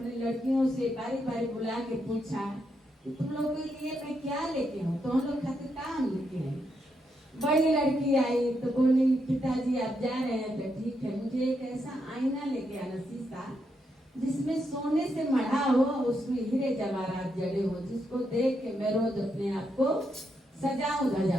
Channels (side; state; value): both; normal; correlation 0.81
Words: लड़कियों से बारी बारी बुला के पूछा कि तुम लोगों के लिए मैं क्या लेके हूँ, तो हम लोग खातिर काम लेके हैं। बड़ी लड़की आई तो बोली पिताजी आप जा रहे हैं तो ठीक है, मुझे एक ऐसा आईना लेके आना, शीशा जिसमें सोने से मढ़ा हो, उसमें हीरे जवाहरात जड़े हो, जिसको देख के मैं रोज अपने आप को सजाऊं